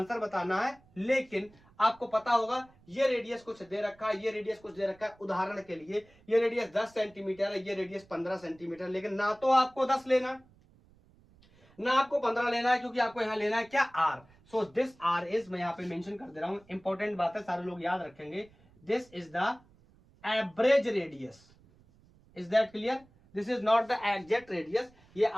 बताना है, लेकिन आपको पता होगा ये रेडियस कुछ दे रखा है, ये रेडियस कुछ दे रखा है। उदाहरण के लिए ये रेडियस 10 सेंटीमीटर है, ये रेडियस 15 सेंटीमीटर, लेकिन ना तो आपको 10 लेना ना आपको 15 लेना है, क्योंकि आपको यहां लेना है क्या, R. So this R is, मैं यहां पे मेंशन कर दे रहा हूं, इंपॉर्टेंट बात है, सारे लोग याद रखेंगे। This is the average radius. Is that clear? This is not the exact radius, ये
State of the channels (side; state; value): right; noise; rumble, 29 dB below the sound